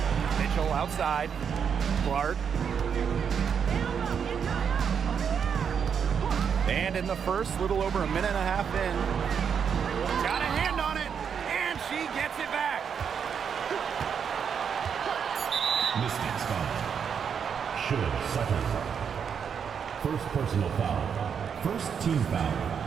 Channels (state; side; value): quieter; left; 7.2 dB